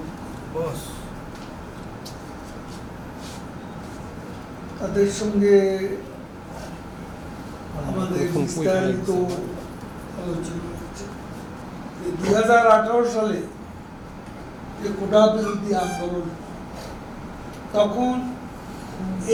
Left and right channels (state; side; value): identical; both; correlation 1.00